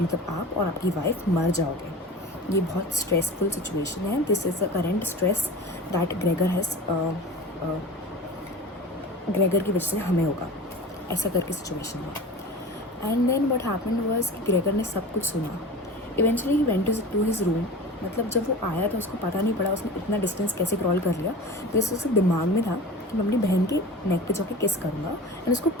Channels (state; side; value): normal; both; correlation 0.34